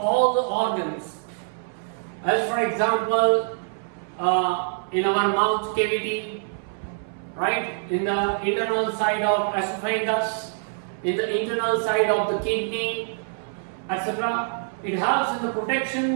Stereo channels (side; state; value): left; silent; 62 dB below the other